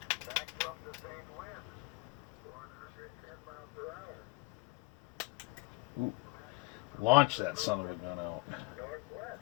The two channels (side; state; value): right; quieter; 25.8 dB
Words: Ooh. Launch that son of a gun out.